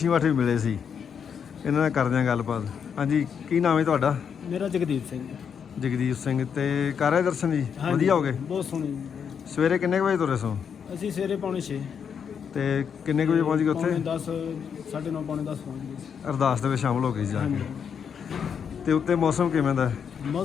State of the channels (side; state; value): right; quieter; 7.2 dB